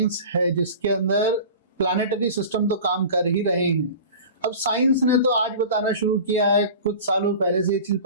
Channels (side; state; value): both; inverted; correlation -0.37